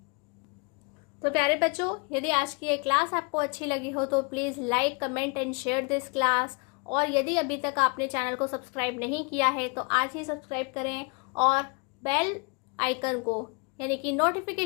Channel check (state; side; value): quieter; right; 33.7 dB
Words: तो प्यारे बच्चों, यदि आज की ये क्लास आपको अच्छी लगी हो तो please like, comment and share this class. और यदि अभी तक आपने चैनल को सब्सक्राइब नहीं किया है तो आज ही सब्सक्राइब करें और बेल आइकन को यानी कि